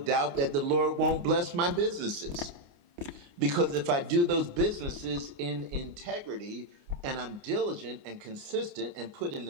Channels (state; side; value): late; left; 29 ms